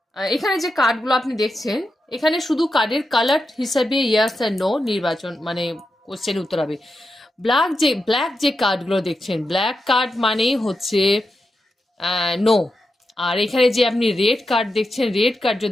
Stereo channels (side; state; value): both; normal; correlation 0.88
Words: এখানে যে কার্ডগুলো আপনি দেখছেন, এখানে শুধু কার্ডের কালার হিসাবে ইয়েস আর নো নির্বাচন, মানে কোশ্চেন উত্তর হবে। ব্ল্যাক যে কার্ডগুলো দেখছেন, ব্ল্যাক কার্ড মানেই হচ্ছে নো। আর এখানে যে আপনি রেড কার্ড দেখছেন, রেড কার্ড